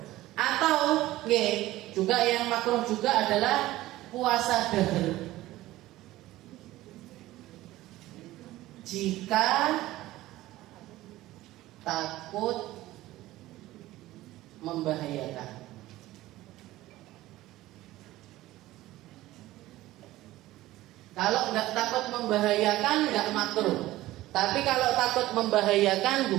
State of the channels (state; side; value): quieter; left; 16.5 dB